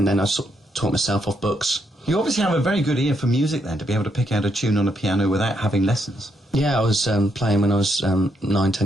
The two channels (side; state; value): both; normal; correlation 0.78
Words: then I sort of taught myself off books. You obviously have a very good ear for music then, to be able to pick out a tune on a piano without having lessons. Yeah, I was playing when I was 9, 10